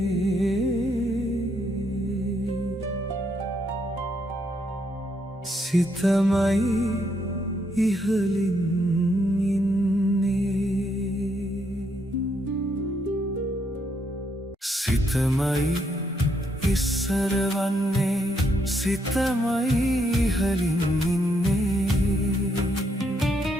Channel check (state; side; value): normal; both; correlation 0.75